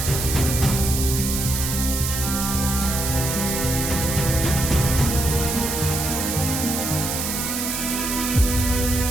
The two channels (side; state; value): right; noise; hiss, 2 dB below the sound